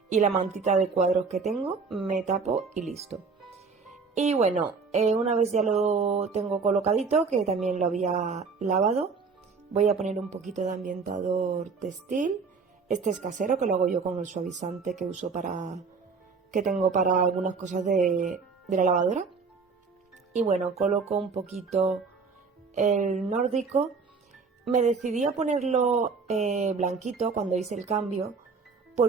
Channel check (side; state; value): left; quieter; 4.9 dB